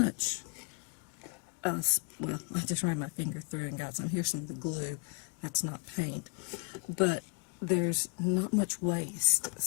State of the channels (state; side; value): quieter; right; 36.7 dB